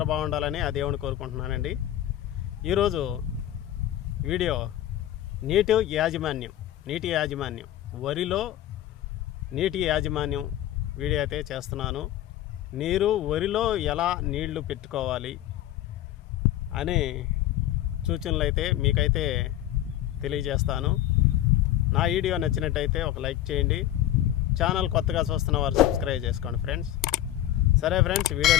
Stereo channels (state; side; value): quieter; right; 12.9 dB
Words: బాగుండాలని ఆ దేవుని కోరుకుంటున్నానండి. ఈరోజు వీడియో నీటి యాజమాన్యం వరిలో నీటి యాజమాన్యం వీడియో అయితే చేస్తున్నాను. వరిలో ఎలా నీళ్లు పెట్టుకోవాలి అనే సూచనలు అయితే మీకైతే తెలియజేస్తాను. నా వీడియో నచ్చినట్టయితే ఒక లైక్ చేయండి. ఛానల్ కొత్తగా చూస్తున్న వారు సబ్స్క్రైబ్ చేసుకోండి ఫ్రెండ్స్. సరే ఫ్రెండ్స్,